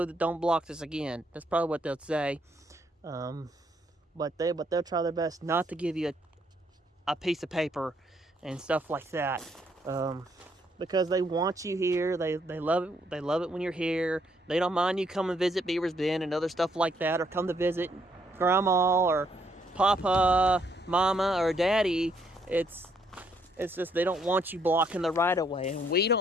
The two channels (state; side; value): normal; both; correlation 0.71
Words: block this again." That's probably what they'll say. But they'll try their best not to give you a piece of paper and stuff like that. Because they want you here. They love it. They love it when you're here. They don't mind you come and visit Beaver's Bend and other stuff like that, or come to visit Grandma or Papa, Mama, or Daddy. It's just they don't want you blocking the right of way, and we